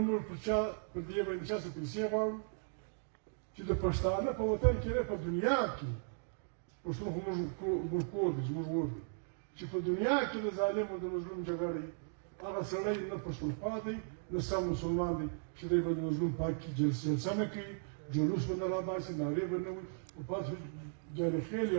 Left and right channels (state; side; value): silent; left; digital silence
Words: الشهر بدي بين شهر سبدي كده كشتانه فوتان كده في الدنيا كي وش مو كودج مو چې په دنیا کې د ظالم او د مظلوم جګړې هغه سړی نه پښتون پاتې نه سم مسلمان دی چې دی به د مظلوم پاک کې جلسه نه کوي جلوس به نه راباسي نارې به نه وي او پاس جارخیل